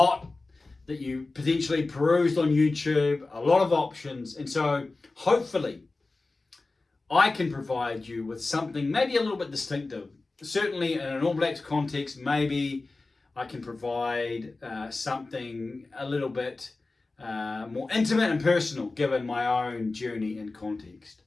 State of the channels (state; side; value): quieter; right; 3.4 dB